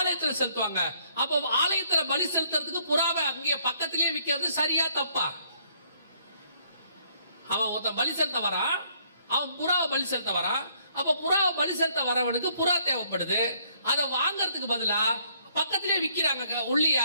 செலுத்துவாங்க. அப்போ ஆலயத்துல பலி செலுத்துறதுக்கு புறாவை அங்கே பக்கத்திலேயே விற்கிறது சரியா தப்பா? அவன் ஒருத்தன் பலி செலுத்த வரான், அவன் புறாவை பலி செலுத்த வரான். அப்ப புறாவை பலி செலுத்த வரவனுக்கு புறா தேவைப்படுது. அதை வாங்கறதுக்கு பதிலா பக்கத்திலேயே விற்கிறாங்க உள்ளியா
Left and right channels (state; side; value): inverted; both; correlation -0.67